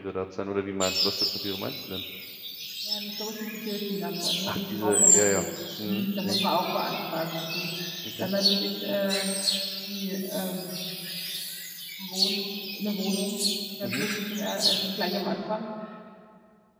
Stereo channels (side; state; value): both; identical; correlation 1.00